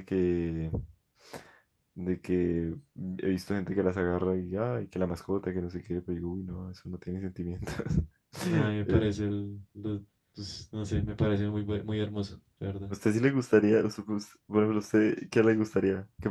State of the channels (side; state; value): both; identical; correlation 1.00